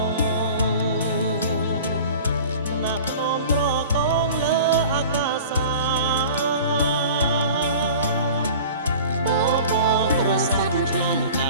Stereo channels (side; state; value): both; inverted; correlation -0.41